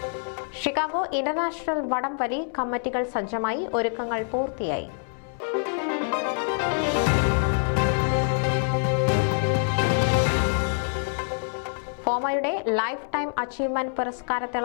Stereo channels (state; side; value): silent; right; 61 dB below the other